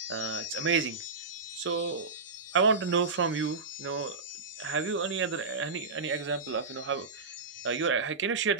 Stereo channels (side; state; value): left; quieter; 4.3 dB